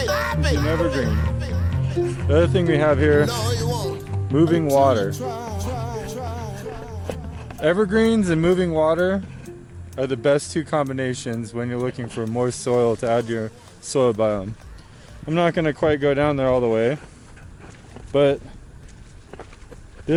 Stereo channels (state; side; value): identical; both; correlation 1.00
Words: an evergreen. The other thing we have here, moving water. Evergreens and moving water are the best two combinations when you're looking for moist soil to add to your soil biome. I'm not going to quite go down there all the way, but